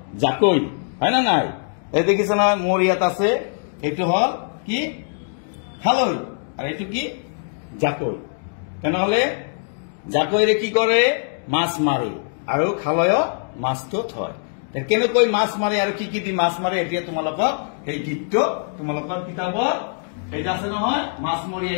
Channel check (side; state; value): right; silent; 64 dB below the other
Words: জাকৈ, হয় না নাই? এই দেখিছ না মোর ইয়াত আছে, এইটো হল কি খালৈ আর এইটো কি জাকৈ। তেনেহলে জাকৈরে কি করে, মাছ মারে, আর খালয় মাছটো থয়। কেনেকৈ মাছ মারে আর কি দি মাছ মারে, এতিয়া তোমালোকক এই গীতটো তোমালোকৰ কিতাপত এইটা আছে নহয়, মাছ